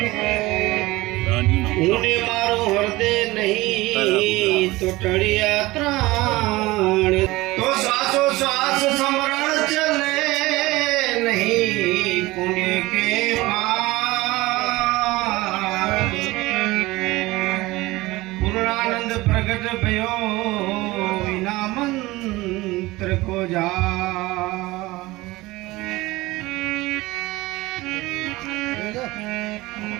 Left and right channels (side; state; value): left; quieter; 20.0 dB